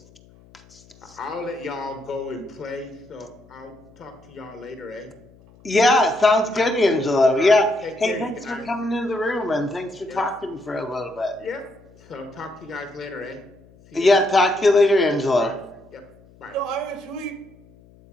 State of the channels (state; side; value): noise; left; hum, 26 dB below the sound